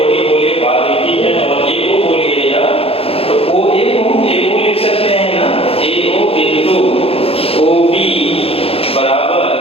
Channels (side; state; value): right; late; 0.28 ms